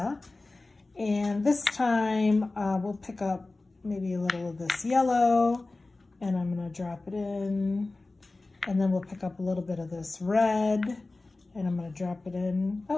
And this time we'll pick up maybe a little of this yellow, and I'm going to drop it in. And then we'll pick up a little bit of this red, and I'm going to drop it in.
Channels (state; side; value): quieter; right; 3.2 dB